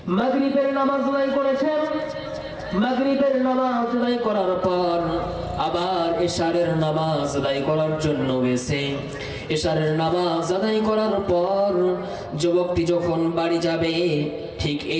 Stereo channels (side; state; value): both; identical; correlation 1.00